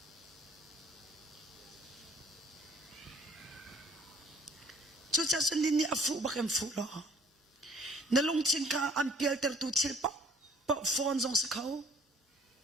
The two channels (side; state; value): both; normal; correlation 0.56